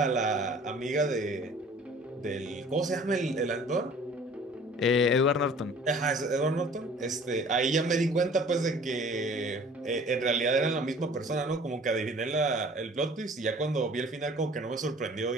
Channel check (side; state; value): both; normal; correlation 0.49